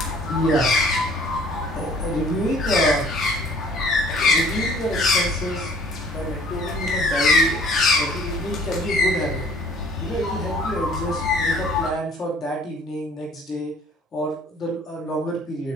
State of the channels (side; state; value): both; normal; correlation 0.54